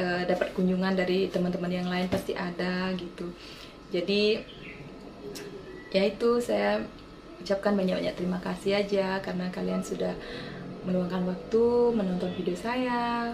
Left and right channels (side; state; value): both; identical; correlation 1.00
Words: dapat kunjungan dari teman-teman yang lain pasti ada gitu. Jadi ya itu, saya ucapkan banyak-banyak terima kasih aja karena kalian sudah meluangkan waktu menonton video saya.